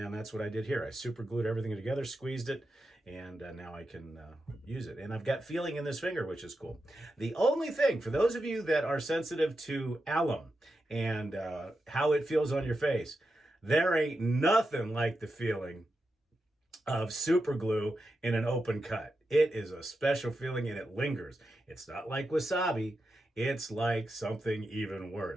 that's what I did here. I super glued everything together, squeezed it, and now I can use it. And I've got feeling in this finger, which is cool. The only thing, for those of you that are sensitive to alum and how it feels on your face, there ain't nothing like the feeling of super glue in an open cut. It is a special feeling and it lingers. It's not like wasabi. It's like something even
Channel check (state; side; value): normal; both; correlation 0.88